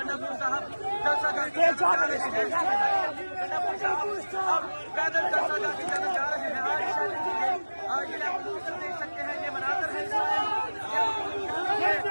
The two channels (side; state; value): both; inverted; correlation -1.00